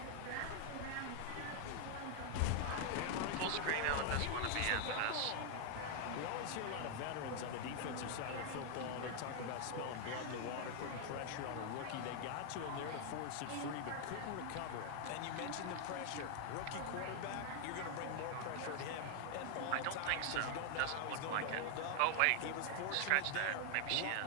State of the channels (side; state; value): both; different; correlation 0.00